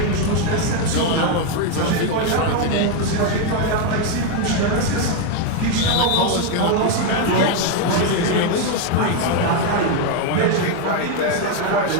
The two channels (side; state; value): both; different; correlation 0.01